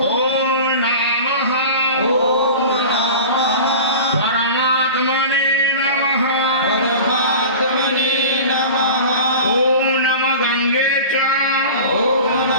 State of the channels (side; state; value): both; inverted; correlation -0.35